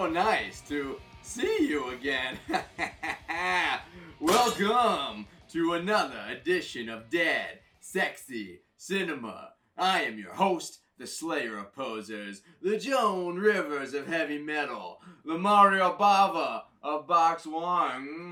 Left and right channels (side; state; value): both; identical; correlation 1.00